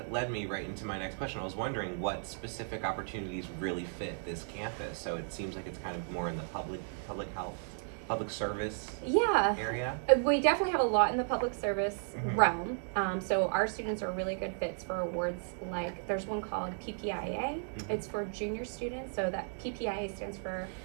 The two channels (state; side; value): silent; left; digital silence